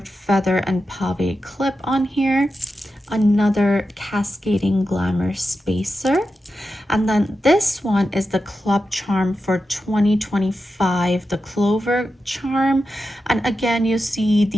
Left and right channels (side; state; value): both; normal; correlation 0.90